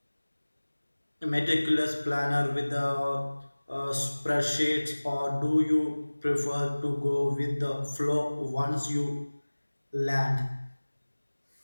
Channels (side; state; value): both; inverted; correlation -1.00